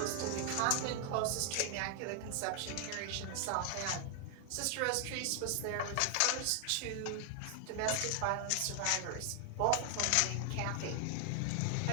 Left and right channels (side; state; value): both; different; correlation 0.00